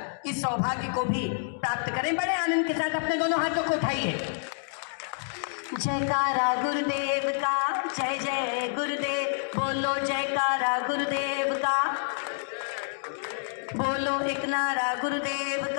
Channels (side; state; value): right; silent; digital silence